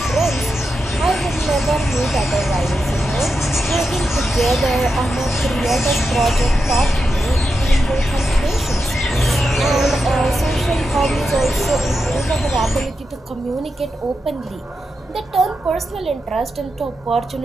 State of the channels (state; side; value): normal; both; correlation 0.88